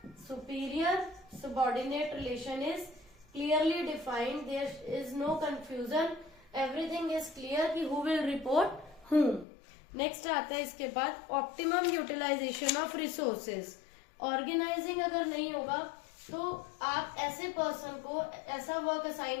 Superior subordinate relation is clearly defined, there is no confusion, everything is clear कि who will report whom. Next आता है इसके बाद optimum utilisation of resources. Organising अगर नहीं होगा तो आप ऐसे पर्सन को ऐसा वर्क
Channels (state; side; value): drops out; right; at 9.5 s